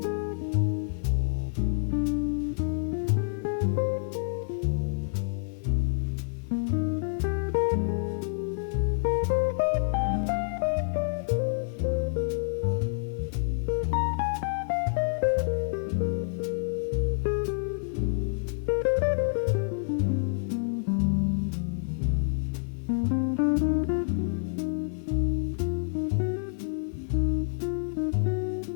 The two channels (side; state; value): right; silent; digital silence